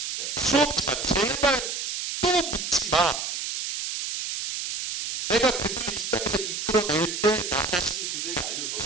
그러니까 수없이 말했어. 제발 또 묻지 마. 내가 그들을 이 땅에서 이끌어낼 때 나 자신이 그들에게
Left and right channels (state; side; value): noise; right; hiss, 4 dB below the sound